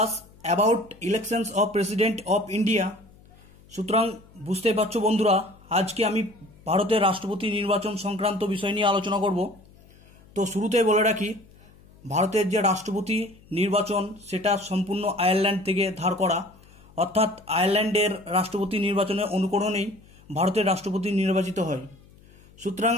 about elections of President of India. সুতরাং বুঝতে পারছো বন্ধুরা, আজকে আমি ভারতের রাষ্ট্রপতি নির্বাচন সংক্রান্ত বিষয় নিয়ে আলোচনা করব। তো শুরুতেই বলে রাখি, ভারতের যে রাষ্ট্রপতি নির্বাচন সেটা সম্পূর্ণ আয়ারল্যান্ড থেকে ধার করা, অর্থাৎ আয়ারল্যান্ডের রাষ্ট্রপতি নির্বাচনের অনুকরণেই ভারতের রাষ্ট্রপতি নির্বাচিত হয়। সুতরাং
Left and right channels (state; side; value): noise; left; hum, 26 dB below the sound